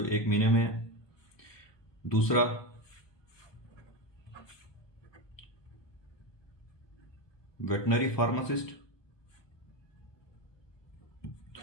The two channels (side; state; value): right; late; 1.2 ms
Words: 1 महीने में है, दूसरा वेटनरी फार्मासिस्ट